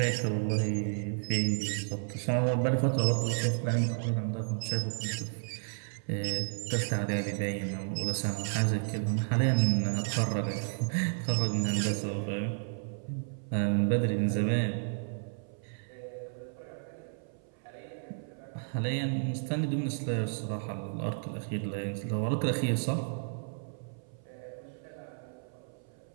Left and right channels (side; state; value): left; silent; 56 dB below the other